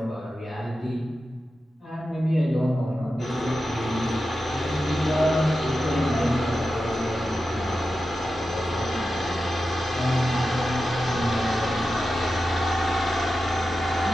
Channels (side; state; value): both; normal; correlation 0.91